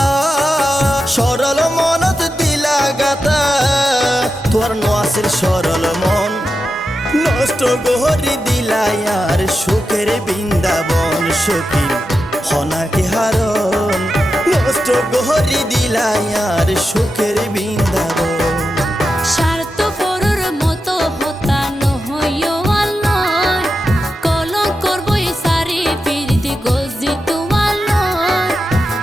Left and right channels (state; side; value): normal; both; correlation 0.90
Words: সরল মনত দিলা গাতা তোর নোয়াসের সরল মন নষ্ট গহরি দিলাই আর সুখের বৃন্দাবন সখী হনাকে হারণ নষ্ট গহরি দিলাই আর সুখের বৃন্দাবন